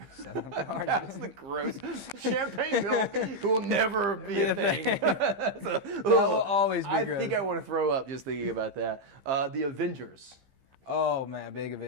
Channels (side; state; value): left; late; 15 ms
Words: So, that's the gross. Champagne milk will never be a thing. That will always be gross. I think I want to throw up just thinking about that. The Avengers. Oh man, big